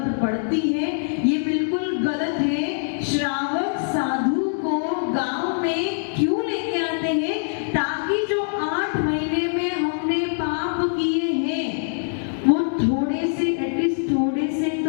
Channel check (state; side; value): silent; right; digital silence